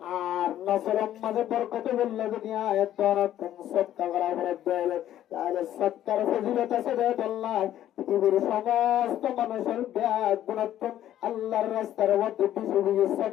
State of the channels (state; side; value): quieter; right; 12.0 dB